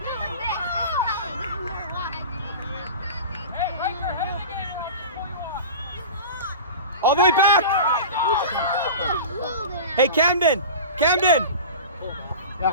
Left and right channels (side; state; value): both; inverted; correlation -0.33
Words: right there. Head again. All the way back. Hey, Camden.